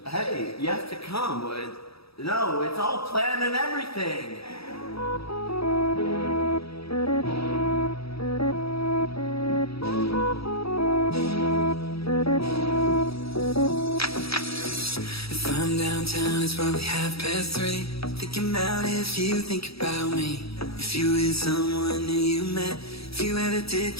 Hey, you have to come. No, it's all planned and everything. If I'm downtown, it's probably 3:30. Thinking about if you think about me. If you with someone new you met. If you ever did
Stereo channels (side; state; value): right; late; 0.77 ms